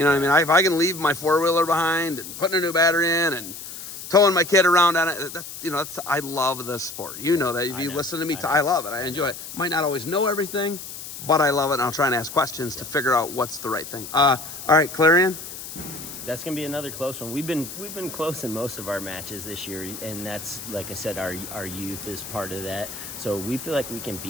know what I mean? If I can leave my 4-wheeler behind and putting a new battery in and towing my kid around on it, I love this sport. You know that. If you listen to me, I love it. I enjoy it. Might not always know everything, but I love it, and I'll try and ask questions to figure out what's the right thing. All right, Clarion? That's going to be another close one. We've been close in most of our matches this year, and that's, like I said, our youth is part of that. So we feel like we can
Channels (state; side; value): noise; left; hiss, 11 dB below the sound